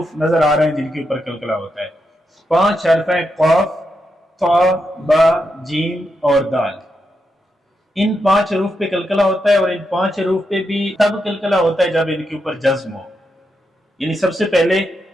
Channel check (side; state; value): both; normal; correlation 0.84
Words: नजर आ रहे हैं जिनके ऊपर कलकला होता है। 5 हर्फ हैं, क़ाफ, ता, बा, जीम और दाल। इन 5 हरूफ पे कलकला होता है और इन 5 हरूफ पे भी तब कलकला होता है जब इनके ऊपर जज्म हो। यानी सबसे पहले